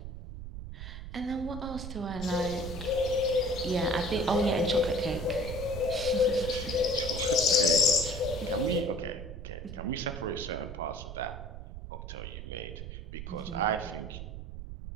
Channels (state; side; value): noise; right; rumble, 9 dB below the sound